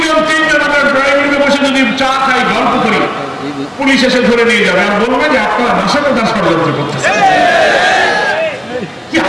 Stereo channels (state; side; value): identical; both; correlation 1.00